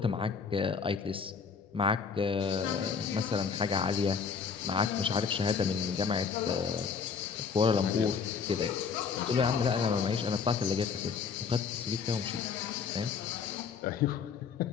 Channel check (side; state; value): right; quieter; 5.9 dB